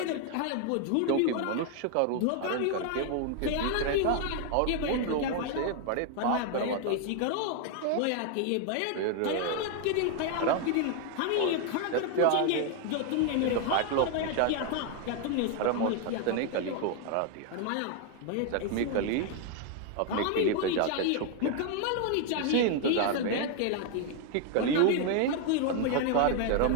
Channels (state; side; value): different; both; correlation 0.00